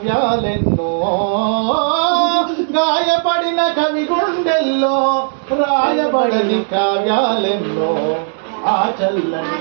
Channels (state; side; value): silent; left; digital silence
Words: గాయపడిన కవి గుండెల్లో రాయబడని కావ్యాలెన్నో. ఆ చల్లని